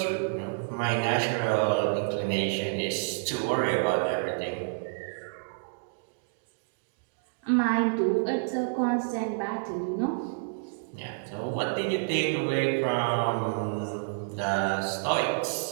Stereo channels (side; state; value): left; silent; digital silence